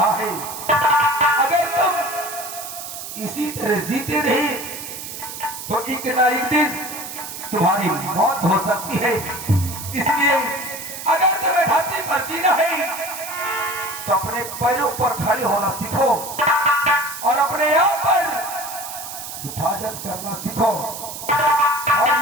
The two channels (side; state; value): right; noise; hiss, 9 dB below the sound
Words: है अगर तुम इसी तरह जीते रहे तो एक ना एक दिन तुम्हारी मौत हो सकती है। इसलिए अगर तुम्हें धरती पर जीना है तो अपने पैरों पर खड़े होना सीखो और अपने आप पर हिफाजत करना सीखो। और